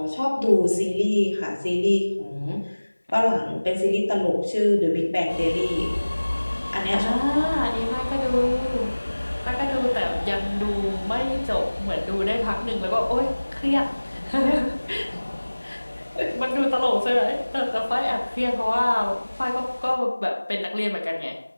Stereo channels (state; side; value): inverted; both; correlation -1.00